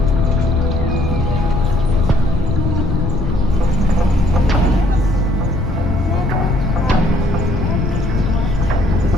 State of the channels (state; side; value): noise; left; rumble, 3 dB below the sound